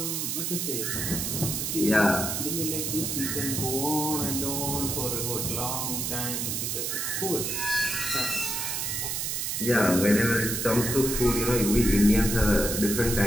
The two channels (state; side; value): noise; right; hiss, 1 dB below the sound